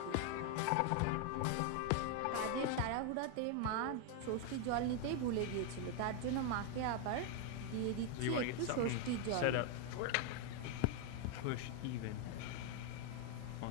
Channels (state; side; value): different; both; correlation 0.01